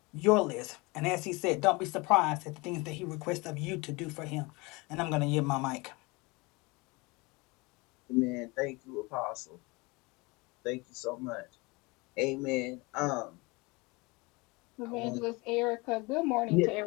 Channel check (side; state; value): right; quieter; 25.6 dB